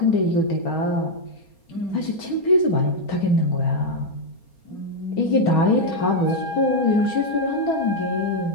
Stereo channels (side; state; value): right; late; 4.3 ms